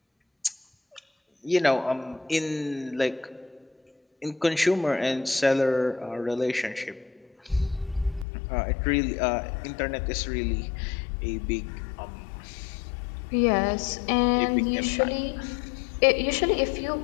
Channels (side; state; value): right; drops out; at 8.2 s